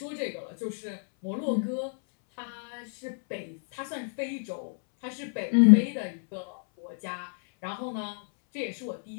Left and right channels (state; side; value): silent; right; 59 dB below the other